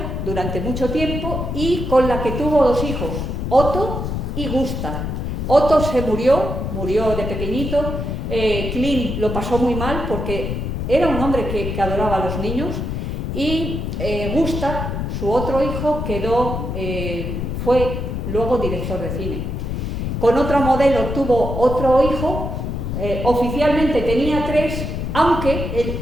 durante mucho tiempo y con la que tuvo dos hijos, Otto y Gustav. Otto se murió de pequeñito. Klein lo pasó muy mal porque era un hombre que adoraba a los niños, y Gustav, su otro hijo, fue luego director de cine. Con otra modelo tuvo otro hijo, oficialmente tenía 3, aunque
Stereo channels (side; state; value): left; noise; rumble, 3 dB below the sound